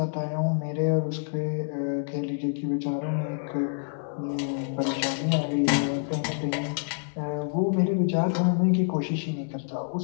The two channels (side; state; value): right; silent; 60 dB below the other